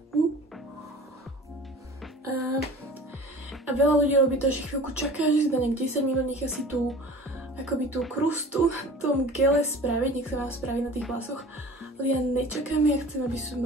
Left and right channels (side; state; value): both; normal; correlation 0.42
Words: A veľa ľudí robí to, že chvíľku čaká, že si dá nejak 10 minút, nechá si tú akoby tú krustu v tom gele spraviť, nech sa vám spraví na tých vlasoch, ale ja nečakám, ja chcem, aby som